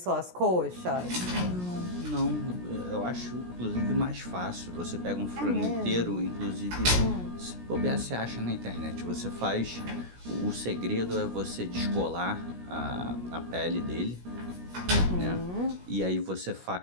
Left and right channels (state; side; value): late; left; 17 ms